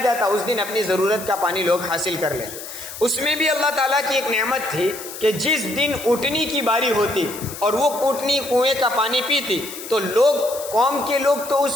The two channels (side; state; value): left; noise; hiss, 12 dB below the sound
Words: جاتا، اس دن اپنی ضرورت کا پانی لوگ حاصل کر لیتے۔ اس میں بھی اللہ تعالیٰ کی ایک نعمت تھی کہ جس دن اٹھنی کی باری ہوتی اور وہ اٹھنی کنویں کا پانی پیتی تو لوگ، قوم کے لوگ تو